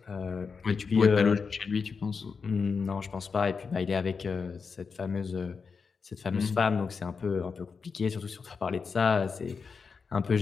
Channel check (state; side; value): quieter; right; 5.3 dB